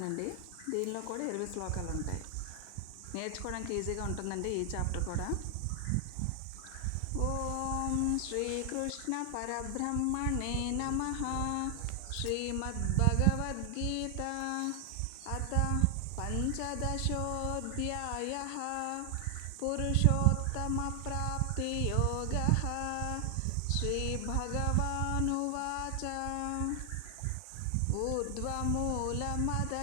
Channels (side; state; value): both; different; correlation 0.00